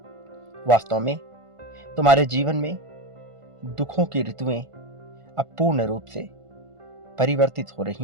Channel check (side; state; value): left; late; 1.5 ms